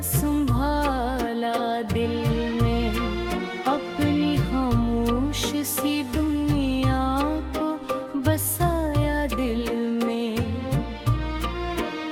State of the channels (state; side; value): identical; both; correlation 1.00